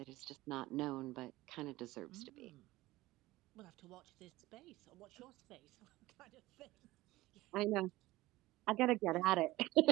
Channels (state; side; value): quieter; left; 18.2 dB